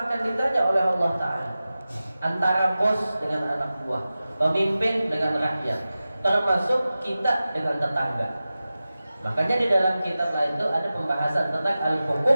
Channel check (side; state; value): both; inverted; correlation -0.95